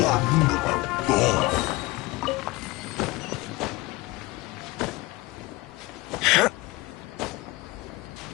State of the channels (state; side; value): quieter; right; 21.7 dB